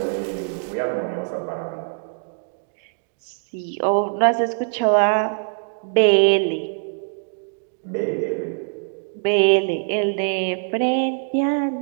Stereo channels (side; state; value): left; silent; digital silence